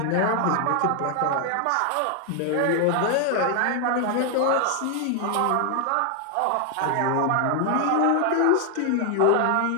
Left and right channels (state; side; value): different; both; correlation 0.00